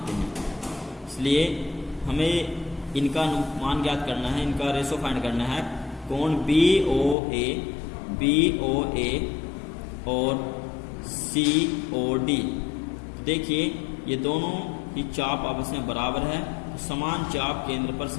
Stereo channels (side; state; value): right; drops out; at 7.2 s